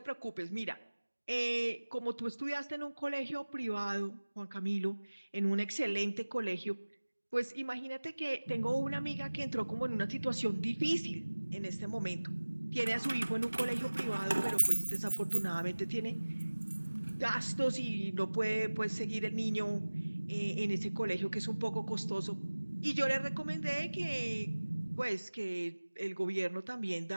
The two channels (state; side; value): inverted; both; correlation -1.00